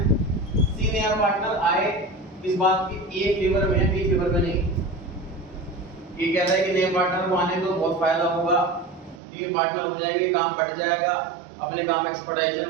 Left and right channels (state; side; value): drops out; left; at 9.2 s